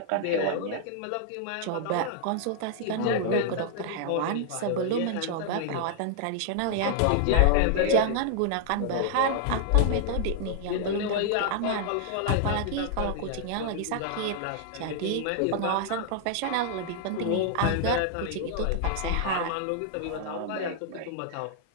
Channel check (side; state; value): both; different; correlation -0.01